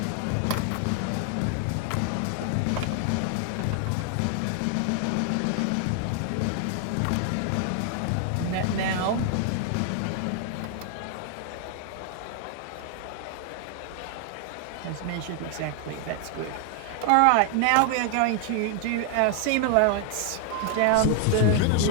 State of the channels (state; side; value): different; both; correlation 0.00